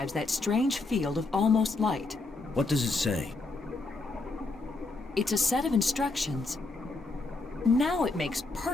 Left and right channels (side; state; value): right; quieter; 3.3 dB